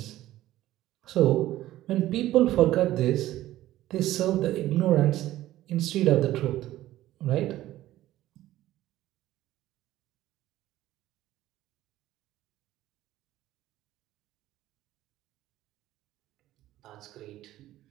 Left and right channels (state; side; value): quieter; left; 14.7 dB